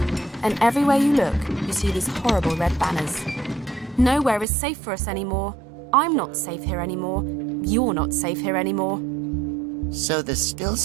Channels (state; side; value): drops out; left; at 4.5 s